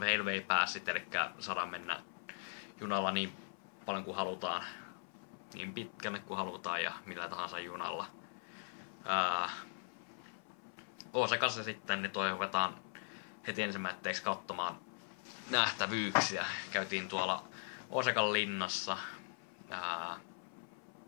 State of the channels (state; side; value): silent; right; 51 dB below the other